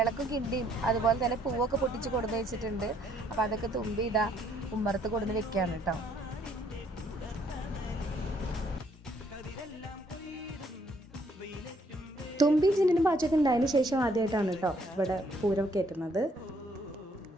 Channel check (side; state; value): both; normal; correlation 0.67